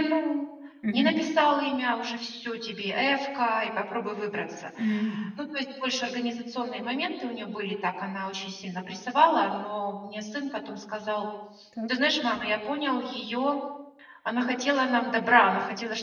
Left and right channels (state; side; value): identical; both; correlation 1.00